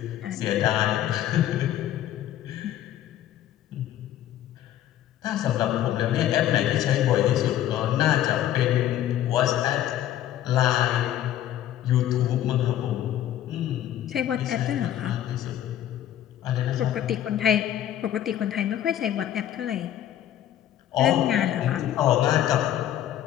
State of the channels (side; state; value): right; quieter; 11.9 dB